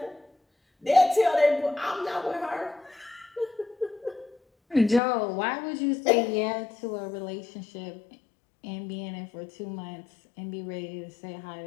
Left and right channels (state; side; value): drops out; right; at 5.0 s